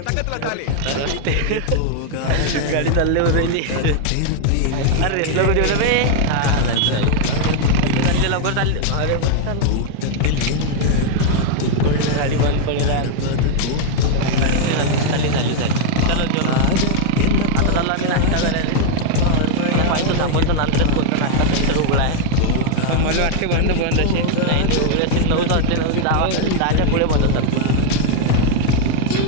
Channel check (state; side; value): different; both; correlation 0.00